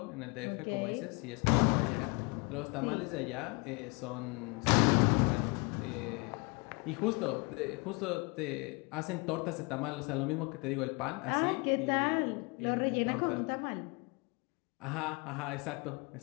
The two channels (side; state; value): right; quieter; 30.0 dB